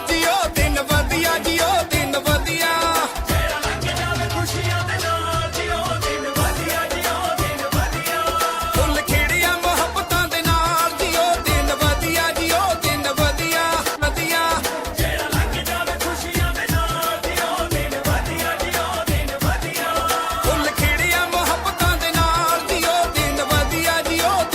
जियो दिन वधिया जियो दिन वधिया फुल खिड़िया मुहब्बतां दे नाल जियो दिन वधिया जियो दिन वधिया वधिया फुल खिड़िया मुहब्बतां दे नाल जियो दिन वधिया जियो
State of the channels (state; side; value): identical; both; correlation 1.00